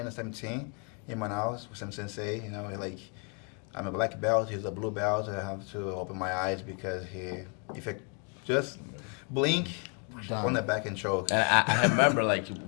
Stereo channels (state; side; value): quieter; right; 36.1 dB